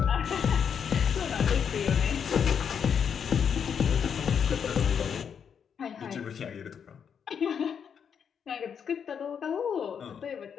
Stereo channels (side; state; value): right; quieter; 7.4 dB